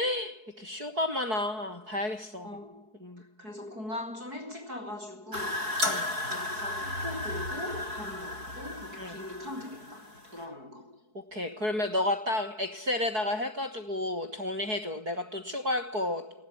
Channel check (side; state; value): left; late; 4.7 ms